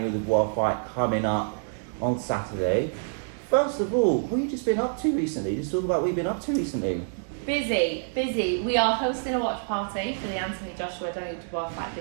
Dubois fight coming up on Saturday. First of all, what have you just been up to recently? Just talk about what you've been up to recently. Busy. We are hosting a watch party for the Anthony Joshua Daniel Dubois fight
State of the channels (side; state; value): left; silent; 60 dB below the other